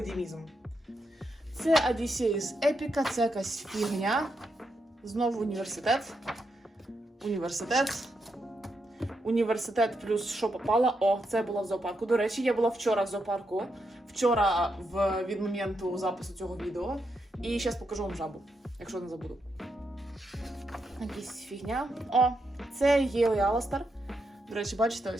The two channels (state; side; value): normal; both; correlation 0.83